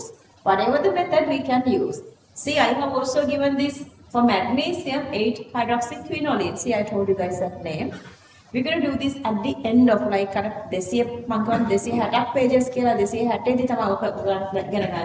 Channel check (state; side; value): identical; both; correlation 1.00